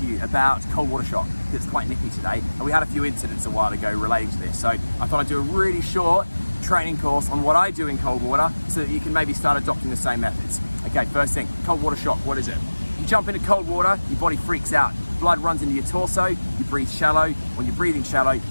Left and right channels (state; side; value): inverted; both; correlation -1.00